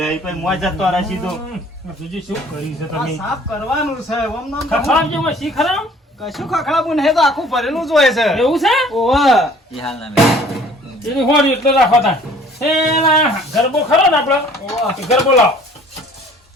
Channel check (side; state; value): both; normal; correlation 0.53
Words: પછી મોય જતો રહે સીધો બીજું શું કરી છે આ તમે સાફ કરવાનું છે ઓમ નામ ખખડાવ જેમાં શીખરામ કશું ખખડાવું નહીં તો આખું ભરેલું જ હોય છે એવું છે ઓહો એની હોરી એટલે રાખો તા એલા ગરબો ખરો ને આપણો ગરબો લાવો